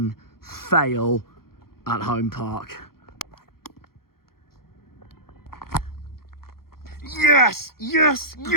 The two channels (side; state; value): right; late; 0.94 ms